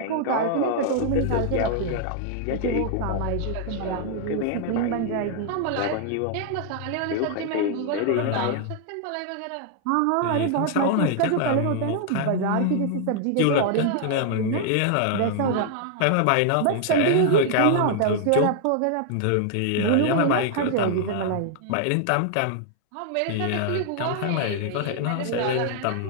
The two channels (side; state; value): both; different; correlation 0.00